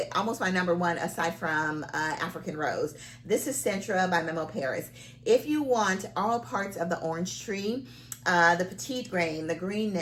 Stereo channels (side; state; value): both; identical; correlation 1.00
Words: almost my number one aside from African Rose. This is Centra by Memo Paris. If you want all parts of the orange tree, the petite grain, the